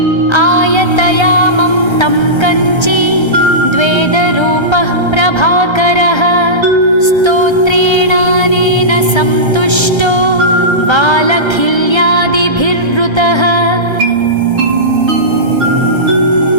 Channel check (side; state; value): right; late; 1.3 ms